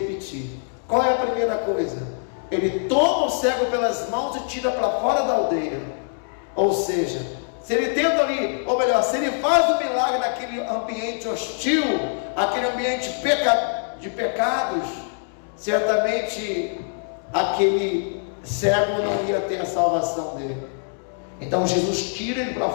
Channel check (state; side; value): silent; right; digital silence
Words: Qual é a primeira coisa? Ele toma o cego pelas mãos e tira para fora da aldeia. Ou seja, se ele tenta ali, ou melhor, se ele faz o milagre naquele ambiente hostil, aquele ambiente de pecados, certamente aquele cego não ia ter a salvação dele. Então Jesus tira ele para